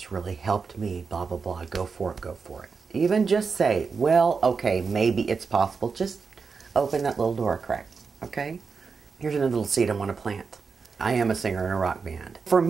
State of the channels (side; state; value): left; quieter; 5.1 dB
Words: really helped me, blah, blah, blah. Go for it, go for it. Even just say, well, okay, maybe it's possible. Just open that little door crack, okay? Here's another little seed I want to plant. I am a singer in a rock band. For